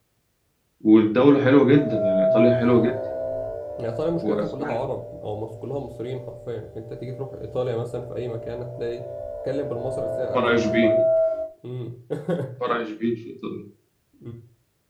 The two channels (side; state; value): both; identical; correlation 1.00